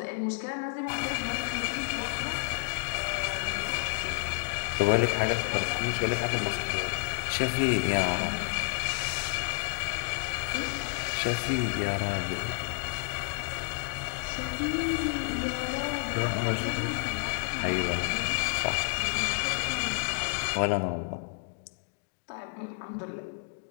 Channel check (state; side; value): silent; right; 58 dB below the other